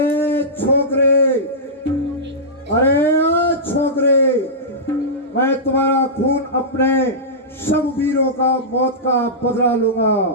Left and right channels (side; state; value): both; normal; correlation -0.15